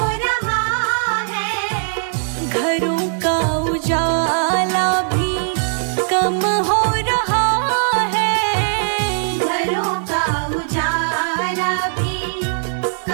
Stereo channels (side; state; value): left; silent; digital silence